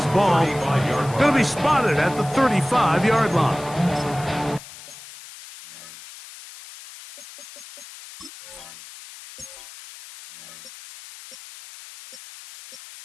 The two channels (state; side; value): noise; left; hiss, 17 dB below the sound